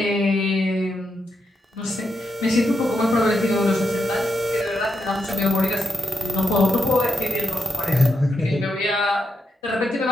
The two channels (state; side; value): normal; both; correlation 0.84